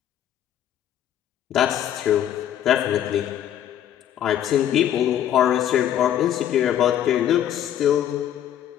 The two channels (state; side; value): quieter; right; 10.7 dB